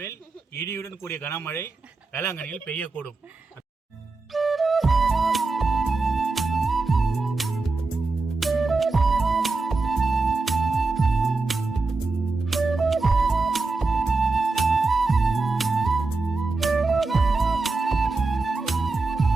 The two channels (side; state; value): left; quieter; 3.7 dB